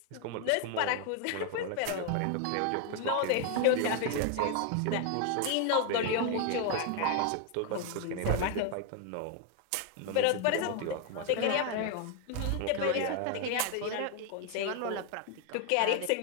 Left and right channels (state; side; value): different; both; correlation 0.01